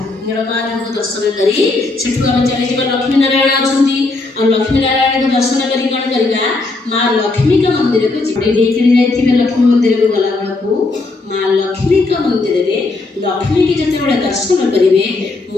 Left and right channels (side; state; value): right; quieter; 3.4 dB